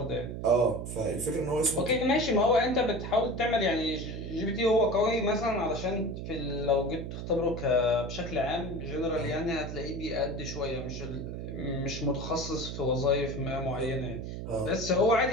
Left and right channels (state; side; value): noise; right; hum, 7 dB below the sound